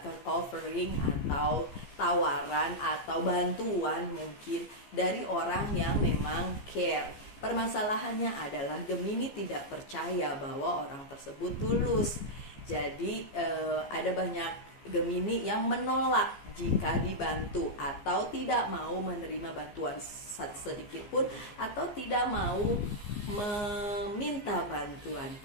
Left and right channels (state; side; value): late; right; 15 ms